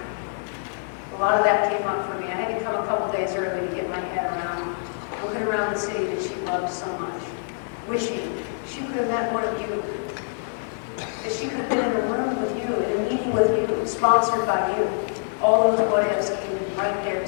a lot of that came up for me. I had to come a couple days early to get my head around, looking around the city that she loved so much, wishing she could have met one of you, that she could have been in a room with you, in a meeting with you, sponsored by you. All those what-ifs came right there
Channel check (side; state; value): right; silent; digital silence